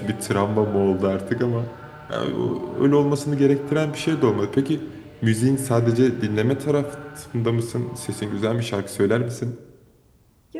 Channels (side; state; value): both; identical; correlation 1.00